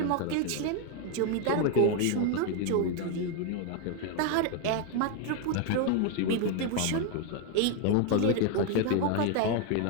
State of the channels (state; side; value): different; both; correlation 0.01